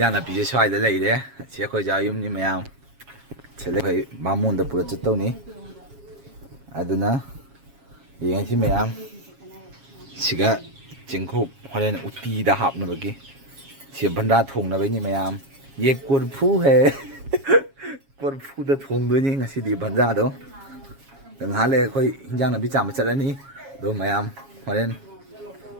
नापी जे स्वाइदा लैरे से अखोय जा युमनी मयाम चले भाई मामून द पूरा चतौनी अदुना येंसी मयाम सिगा चिंखुप हरेन उटी दा हापनबगी से भंडा थोंगनबैनी मयाम ये कुरफू है कुरफू दा थोंगदोनी ngasi भंडा दो ngहाले अखोय हिंजांग नापी चाम चलनी दो मयाम हरेन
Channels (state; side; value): late; left; 7.3 ms